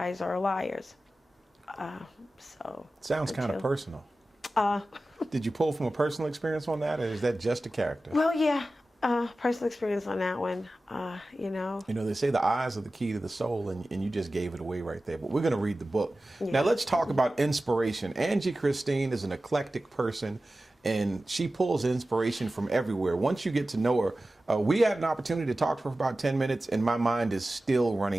are liars. Sounds kind of personal. Did you pull from a personal experience on that, or is that just a character? Well, yeah, personal experience on that one, They say the eyes are the key to the soul, and you just gave it away right there. But we're going to read the book. Yeah. Now, let's talk about inspiration. Angie Christine is an eclectic person, and she pulls inspiration from everywhere. Once you get to know her, we had an opportunity to talk to her for about 10 minutes, and my mind is still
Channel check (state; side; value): normal; both; correlation 0.95